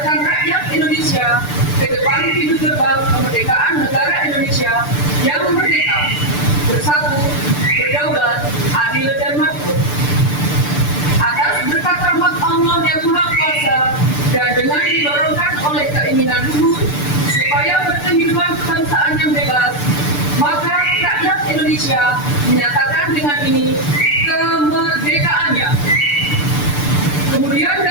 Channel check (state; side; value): late; right; 6.8 ms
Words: rakyat Indonesia ke depan pintu gerbang kemerdekaan negara Indonesia yang merdeka, bersatu, berdaulat, adil dan makmur. Atas berkat rahmat Allah yang Maha Kuasa dan dengan didorongkan oleh keinginan luhur supaya berkehidupan kebangsaan yang bebas, maka rakyat Indonesia menyatakan dengan ini kemerdekaannya. Kemudian